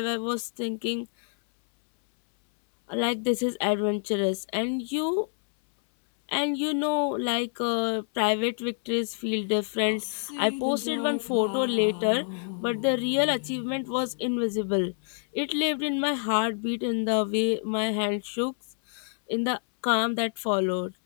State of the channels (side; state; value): right; silent; 60 dB below the other